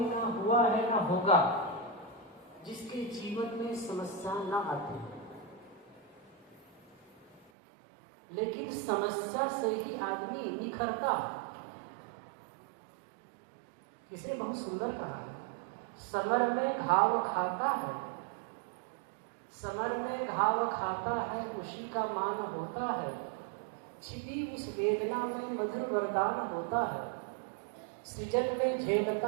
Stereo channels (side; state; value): left; drops out; at 7.5 s